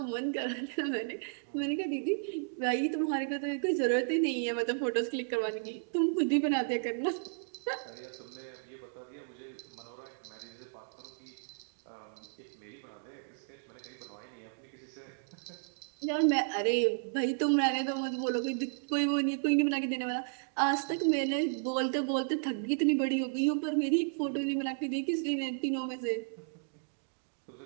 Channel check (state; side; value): silent; left; digital silence